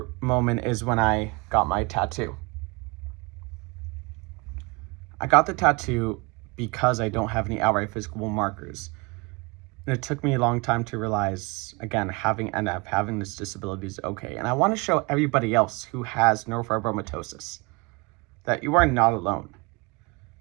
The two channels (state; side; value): quieter; left; 27.7 dB